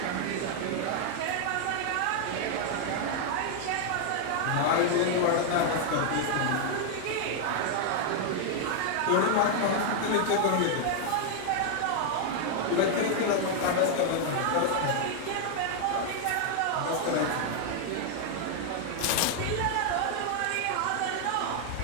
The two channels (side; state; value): both; different; correlation 0.00